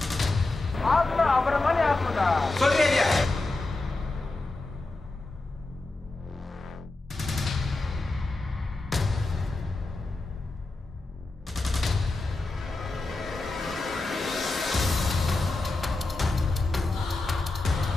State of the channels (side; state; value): right; quieter; 3.1 dB